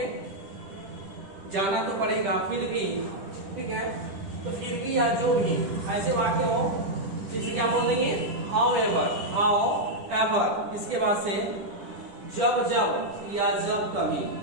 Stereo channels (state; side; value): late; left; 10 ms